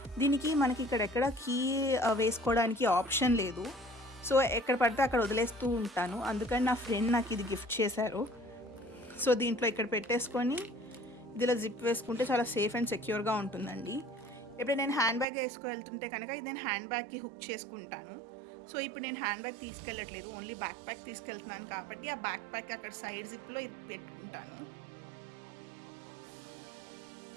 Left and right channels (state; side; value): drops out; left; at 15.2 s